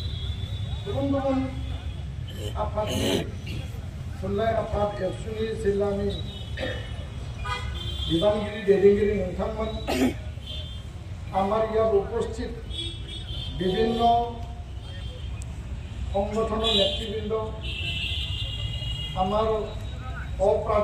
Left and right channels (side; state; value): both; identical; correlation 1.00